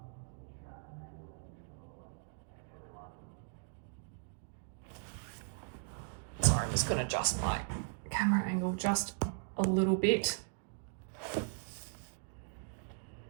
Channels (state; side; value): silent; left; digital silence